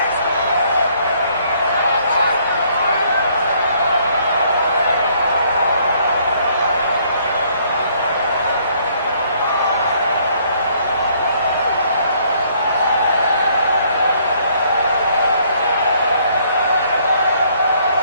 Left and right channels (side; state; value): both; inverted; correlation -0.65